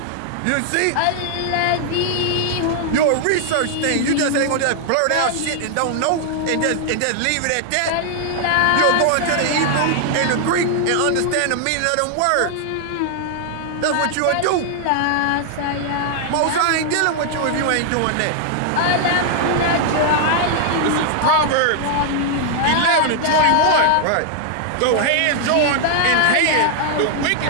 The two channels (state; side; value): different; both; correlation 0.00